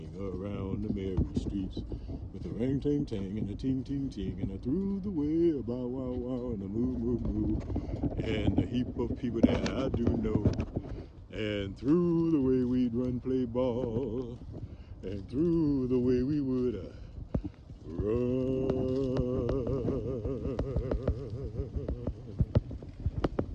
around the merry streets. With the ring ting tang and the ting ting, and I threw the way a bow wow and a moo, and a heap of people that I do know. And through the way we'd run play ball, and through the way we would run.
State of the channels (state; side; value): identical; both; correlation 1.00